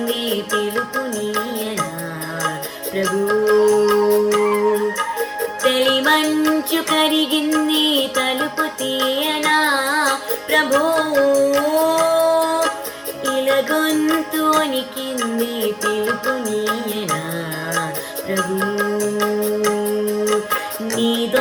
పిలుపు నీయనా ప్రభు. తెలి మంచు కరిగింది తలుపు తీయనా ప్రభు, ఇలా గొంతు వణికింది పిలుపు నీయనా ప్రభు.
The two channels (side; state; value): both; identical; correlation 1.00